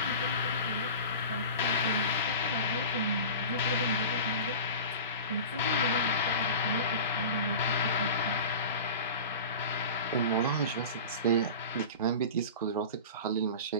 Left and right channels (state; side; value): inverted; both; correlation -0.33